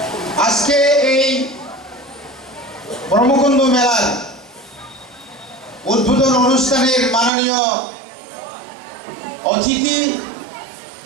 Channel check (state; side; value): drops out; left; at 7.3 s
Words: আজকে এই ব্রহ্মকুণ্ড মেলার উদ্বোধন অনুষ্ঠানের মাননীয় অতিথি